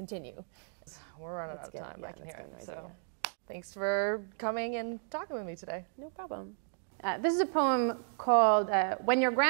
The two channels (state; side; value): silent; left; digital silence